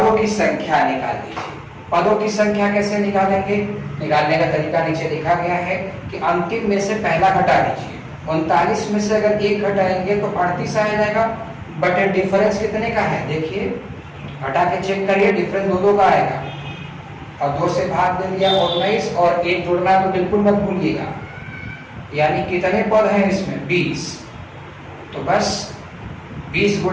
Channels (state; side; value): identical; both; correlation 1.00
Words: की संख्या निकाल दीजिए। पदों की संख्या कैसे निकालेंगे? निकालने का तरीका नीचे लिखा गया है कि अंतिम में से पहला घटा दीजिए। 39 में से अगर 1 घटाएंगे तो 38 आ जाएगा, बट डिफरेंस कितने का है? देखिए घटा के चेक करिए, डिफरेंस 2 का आएगा, और 2 से भाग दे दिया 19, और 1 जोड़ना तो बिल्कुल मत भूलिएगा। यानी कितने पद हैं इसमें? 20। तो बस 20